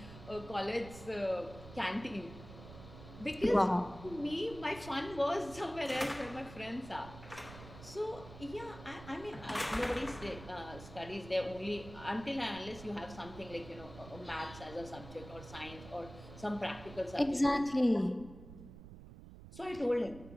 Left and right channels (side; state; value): right; noise; rumble, 15 dB below the sound